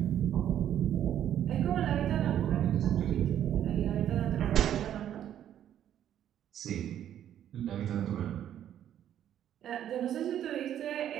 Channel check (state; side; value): quieter; left; 10.6 dB